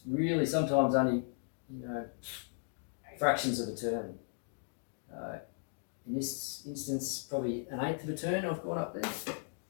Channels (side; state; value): right; silent; digital silence